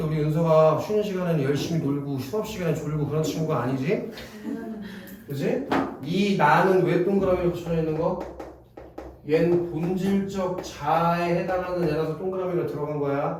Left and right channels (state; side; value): identical; both; correlation 1.00